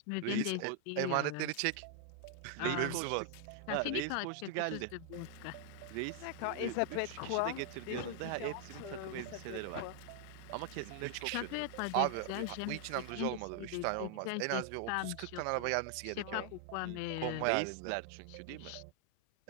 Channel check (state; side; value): different; both; correlation 0.00